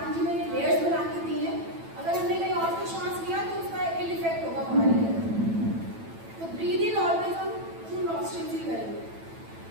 जी ने लेयर्स बना के दी है. अगर हमने कहीं और से श्वास लिया तो उसका इल इफेक्ट होगा हमारे लिए. तो ब्रीद इन ऑलवेज हम थ्रू नॉस्ट्रिल्स ही करेंगे.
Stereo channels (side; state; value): left; late; 9.0 ms